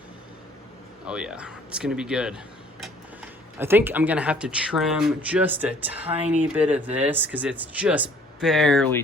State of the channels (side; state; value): both; normal; correlation 0.56